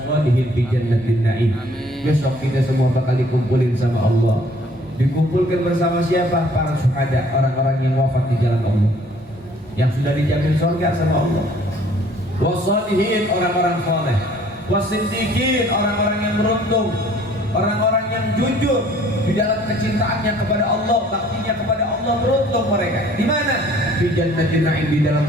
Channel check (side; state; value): both; normal; correlation 0.57